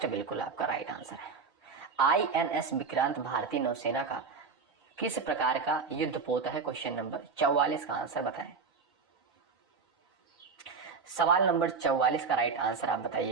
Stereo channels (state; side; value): quieter; left; 5.1 dB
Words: बिल्कुल आपका राइट आंसर है। INS विक्रांत भारतीय नौसेना का किस प्रकार का युद्धपोत है? क्वेश्चन नंबर 44 का आंसर बताएं। सवाल नंबर 44 का राइट आंसर आप